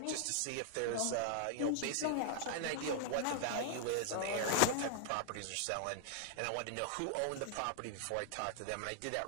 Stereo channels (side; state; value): both; different; correlation 0.00